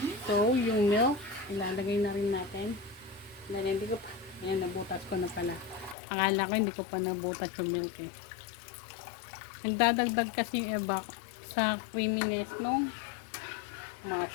So, yung milk, ilalagay na rin natin. Dahil hindi ko pa, ayan, nabutas ko na pala. Akala ko hindi ko pa nabutas yung milk eh. Nagdadagdag kasi ebak sa creaminess nung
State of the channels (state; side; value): drops out; right; at 6.0 s